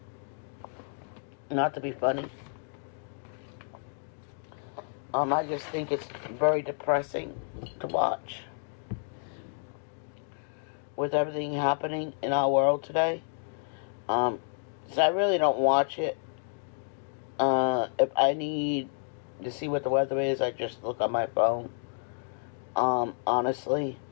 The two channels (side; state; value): right; silent; 58 dB below the other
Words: Not to be funny. I just think it's very depressing to watch. With everything happening in our world today. So I really don't watch it. If I need to see what the weather is, I just look on my phone. Honestly.